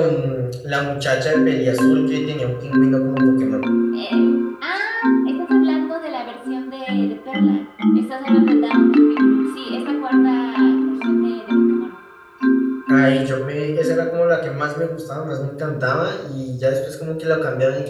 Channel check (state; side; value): identical; both; correlation 1.00